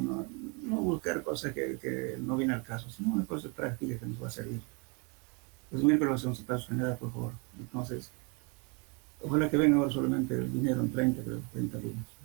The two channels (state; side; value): quieter; left; 32.9 dB